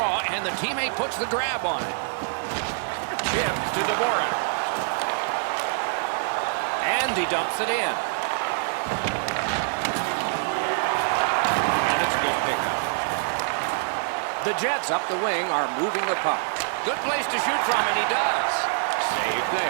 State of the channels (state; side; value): silent; left; digital silence